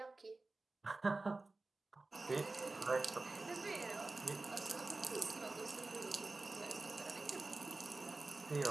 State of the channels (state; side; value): quieter; left; 3.3 dB